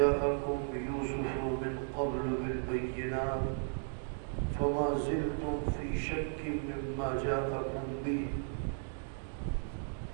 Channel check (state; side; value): silent; left; digital silence